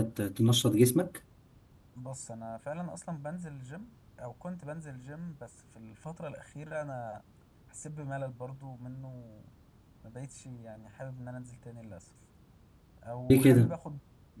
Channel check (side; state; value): both; identical; correlation 1.00